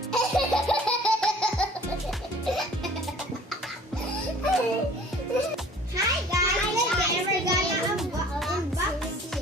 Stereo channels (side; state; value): both; normal; correlation 0.50